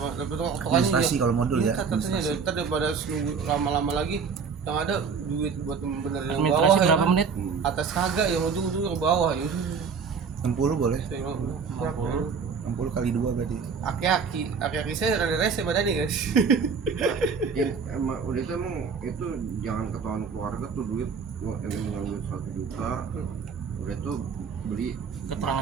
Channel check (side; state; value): left; quieter; 5.7 dB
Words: Administrasi kalau modul ya, Katanya administrasi. ntar daripada nunggu lama-lama lagi yang ada duit buat benerin yang Administrasi bawah ya berapa kan? menit? Atas kagak yang ujung-ujung ke bawah ya. 60 boleh. Saya bilang, berapa? 60 kali 2 berarti. Aki-aki saya rada rese badannya guys. Ya, emang udah itu emang itu jangan ketahuan keluarga tuh duit ini mengambil 1 juta udah tuh beli